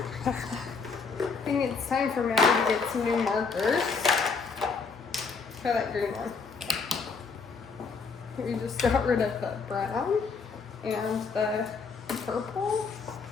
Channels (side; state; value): right; quieter; 4.9 dB